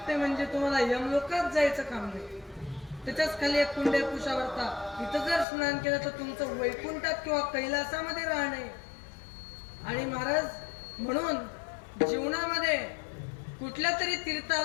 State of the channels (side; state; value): right; drops out; at 5.5 s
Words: म्हणजे तुम्हाला यमलोकात जायचं काम नाही. त्याच्याच खाली एक कुंडे कुशावर्ता, इथं जर स्नान केलं तर तुमचं वैकुंठात किंवा कैलासामध्ये राहणे. आणि महाराज म्हणून जीवनामध्ये कुठल्या तरी